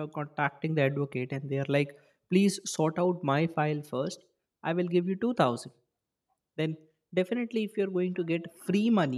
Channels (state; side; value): identical; both; correlation 1.00